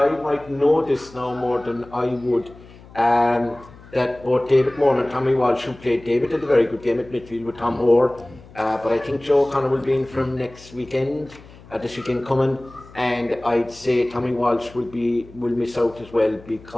might know this now more than I would. That both David Moore and Tommy Walsh, who played David, had a very good game at midfield with Tom Hoare. But I think Joe O'Connor will be in from next weekend, this weekend coming. And I'd say Tommy Walsh will miss out as well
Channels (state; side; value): noise; left; hum, 21 dB below the sound